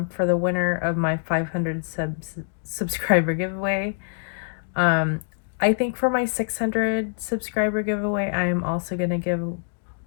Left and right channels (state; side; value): silent; right; digital silence